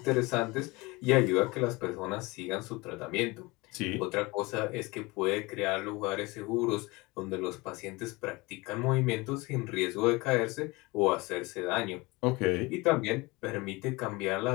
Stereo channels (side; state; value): right; quieter; 23.8 dB